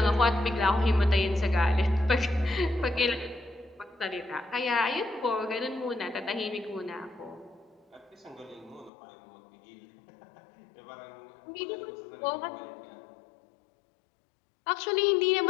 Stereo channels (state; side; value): drops out; right; at 8.9 s